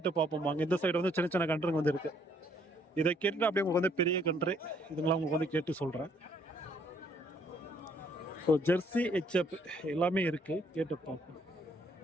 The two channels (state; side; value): normal; both; correlation 0.66